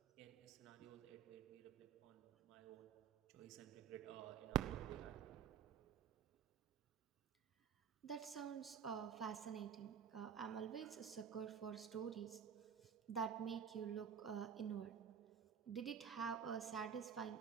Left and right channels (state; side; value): quieter; left; 7.7 dB